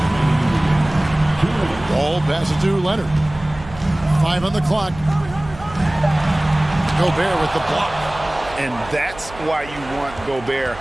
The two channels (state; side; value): noise; right; hum, 17 dB below the sound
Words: Wall passes to Leonard. 5 on the clock. Gobert with the block. And that's why you want Gobert